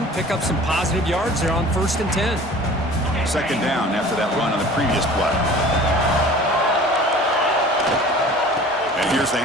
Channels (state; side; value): normal; both; correlation 0.44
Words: pick up some positive yards there on 1st and 10. Second down after that run on the previous play. And here's the